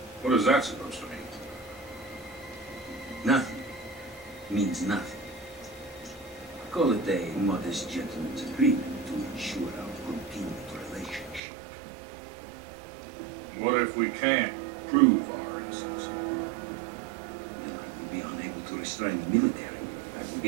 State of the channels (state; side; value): drops out; left; at 11.4 s